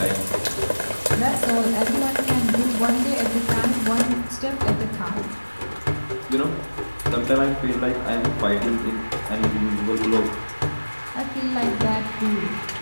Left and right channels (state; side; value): inverted; both; correlation -1.00